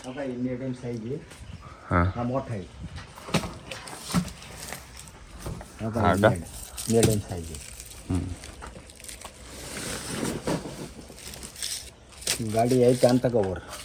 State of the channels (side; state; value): both; identical; correlation 1.00